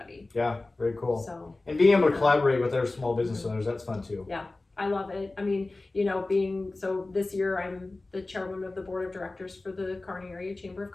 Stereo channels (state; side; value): quieter; right; 3.1 dB